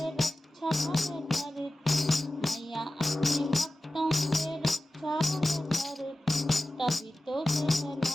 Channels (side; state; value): both; normal; correlation 0.95